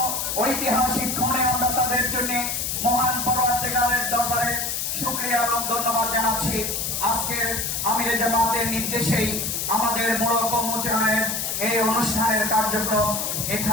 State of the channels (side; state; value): left; noise; hiss, 1 dB below the sound